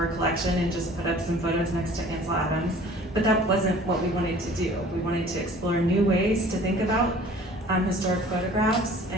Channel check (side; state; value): both; normal; correlation 0.49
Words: collection and just put up some photos next to Ansel Adams, but that wasn't what we wanted to do. We wanted to explore new ways to think about historic photographs